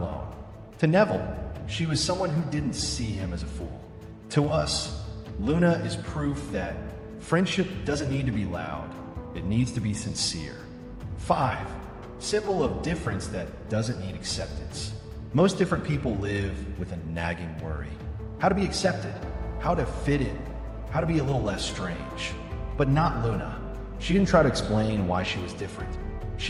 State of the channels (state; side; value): identical; both; correlation 1.00